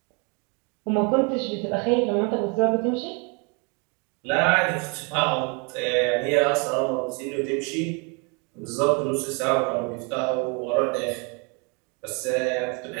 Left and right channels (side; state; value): left; quieter; 33.6 dB